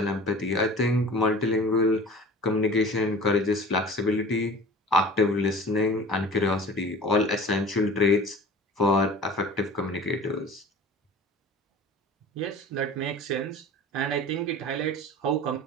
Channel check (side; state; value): both; normal; correlation 0.41